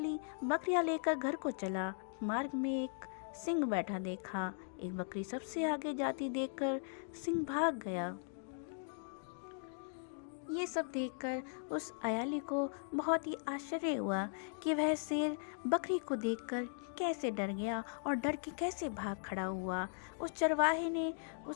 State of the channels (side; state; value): right; silent; digital silence